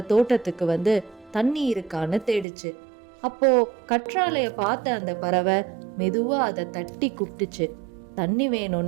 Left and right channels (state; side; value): drops out; left; at 2.5 s